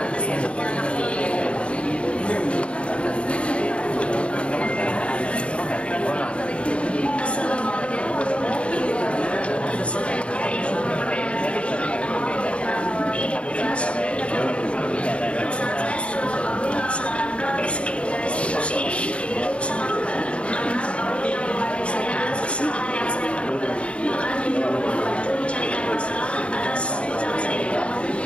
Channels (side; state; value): right; late; 0.060 ms